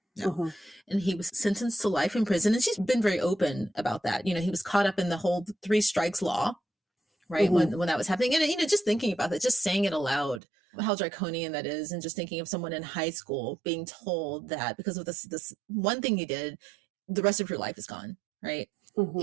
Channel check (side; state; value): left; drops out; at 10.4 s